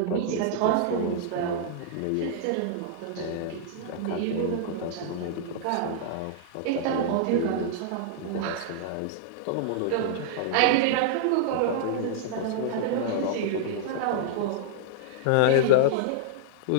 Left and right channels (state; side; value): different; both; correlation -0.01